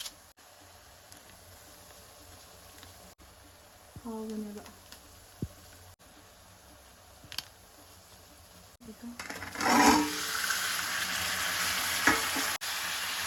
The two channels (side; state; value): both; identical; correlation 1.00